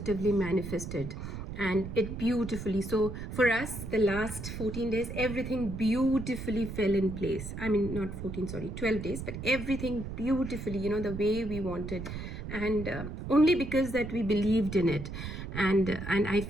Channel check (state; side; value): noise; right; rumble, 7 dB below the sound